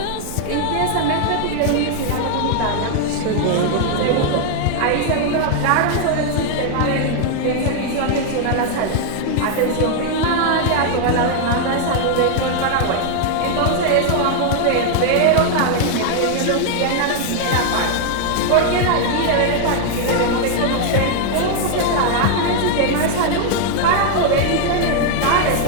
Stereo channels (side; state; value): both; different; correlation 0.00